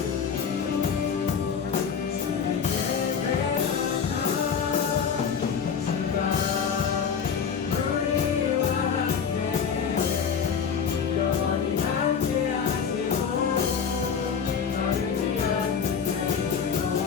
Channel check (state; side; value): quieter; right; 6.7 dB